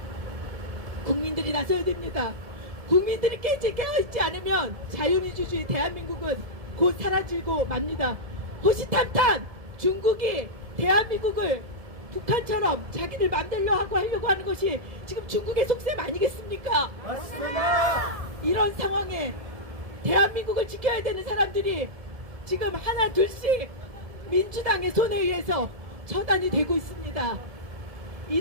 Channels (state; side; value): late; left; 1.7 ms